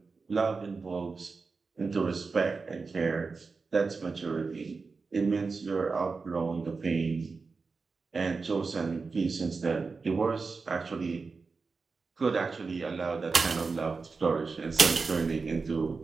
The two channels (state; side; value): quieter; left; 4.5 dB